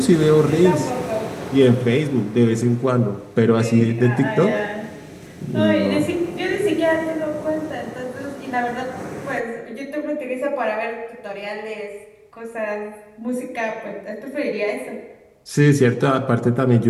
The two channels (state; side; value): identical; both; correlation 1.00